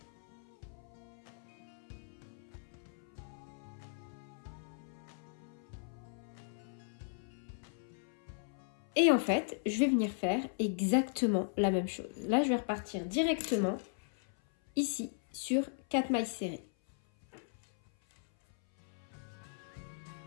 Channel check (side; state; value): right; silent; 53 dB below the other